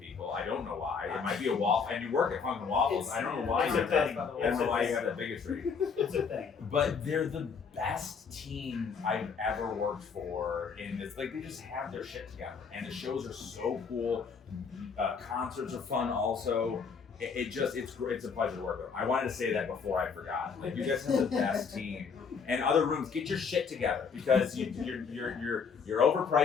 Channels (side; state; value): right; quieter; 5.8 dB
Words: I don't know why. It might be a wall. And you work at Funk N Waffles. I don't know why. It's a thing. I don't know why you have that bigotry. It's a thing. But they're the best team I've ever worked for. In this, like, they just have their shit together, and the shows are so cool. Concerts are fun also. It's a pleasure to work with. I wanted to say that before I forgot. Like, you guys have the best team. And other rooms, get your shit together, because you're